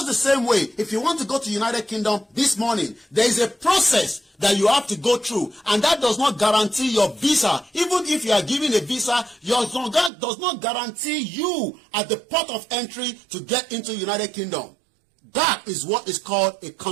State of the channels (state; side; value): drops out; left; at 10.1 s